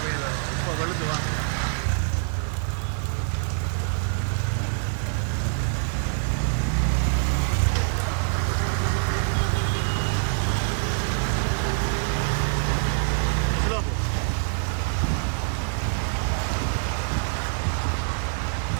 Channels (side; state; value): left; silent; digital silence